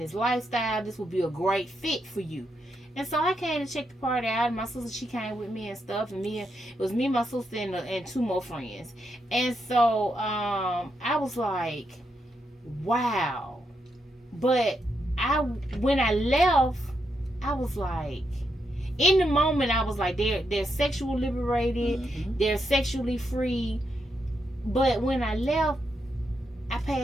lifestyle. This would be a great fit for you. And so I came to check the party out. And my sister, she came with me and stuff. And it was me, my sister, and two more friends. And so I was like, wow. But when I left, I was like, in the moment, I was like, they're sexually liberated, they're sexually free. But when I left, I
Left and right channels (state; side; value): normal; both; correlation 0.82